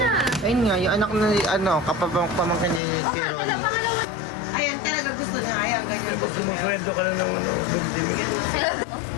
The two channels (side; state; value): right; drops out; at 2.8 s